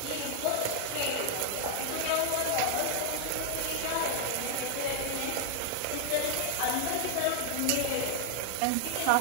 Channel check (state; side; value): different; both; correlation 0.00